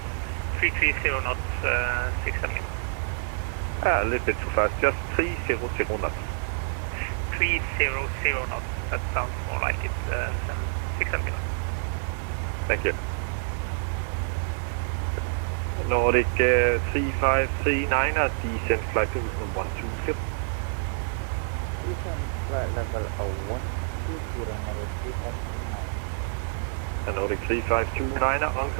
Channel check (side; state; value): left; silent; digital silence